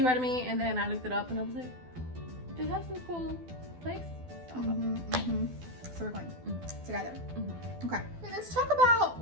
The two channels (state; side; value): late; left; 12 ms